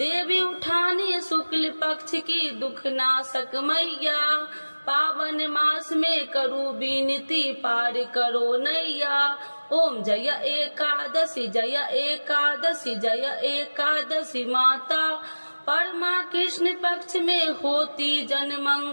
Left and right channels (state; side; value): inverted; both; correlation -1.00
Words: उठाने शुक्ल पक्ष की दुख नाशक मैया, पावन मास में करूँ विनती पार करो नैया। ओम जय एकादशी जय एकादशी जय एकादशी माता, परमा कृष्ण पक्ष में होती जन